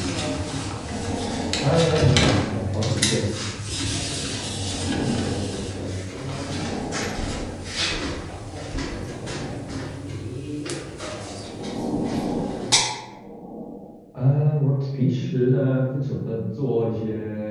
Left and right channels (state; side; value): identical; both; correlation 1.00